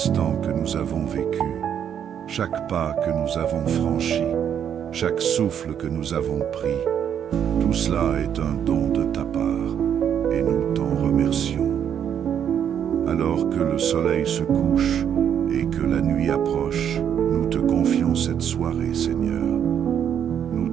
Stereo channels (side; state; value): left; quieter; 8.9 dB